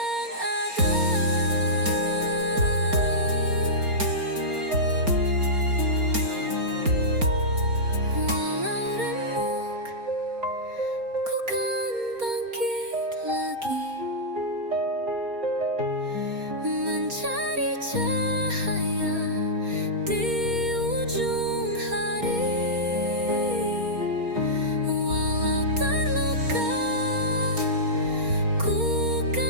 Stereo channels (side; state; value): left; late; 4.3 ms